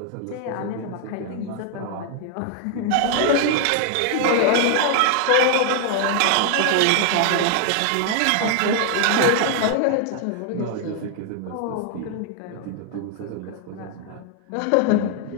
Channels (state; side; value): different; both; correlation 0.00